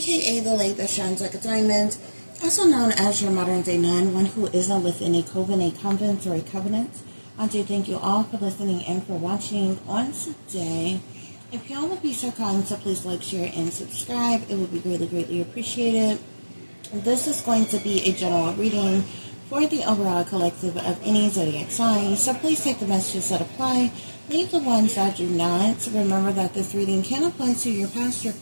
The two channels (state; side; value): inverted; both; correlation -1.00